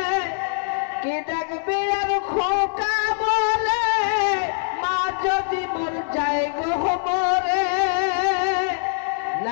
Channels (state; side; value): silent; right; 63 dB below the other